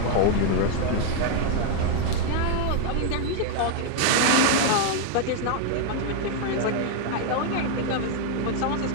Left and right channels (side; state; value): both; different; correlation 0.00